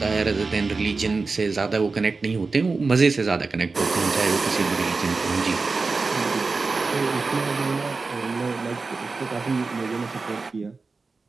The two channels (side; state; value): left; quieter; 4.1 dB